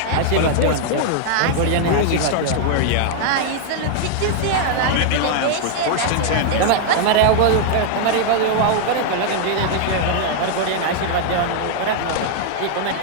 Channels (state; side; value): different; both; correlation -0.01